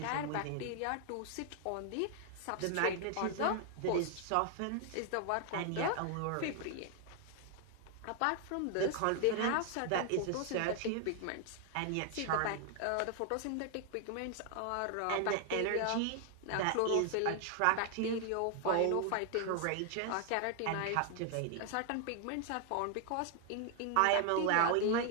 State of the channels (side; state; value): both; different; correlation 0.00